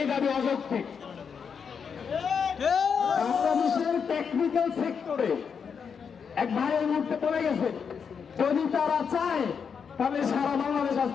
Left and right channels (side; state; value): right; quieter; 6.5 dB